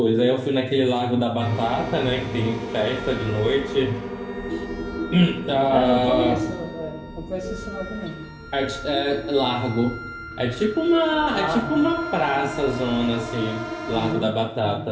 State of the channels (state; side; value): identical; both; correlation 1.00